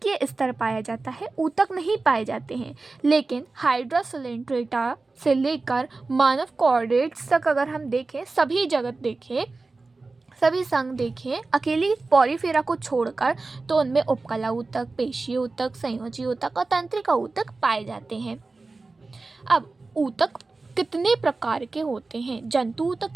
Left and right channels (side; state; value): left; quieter; 3.7 dB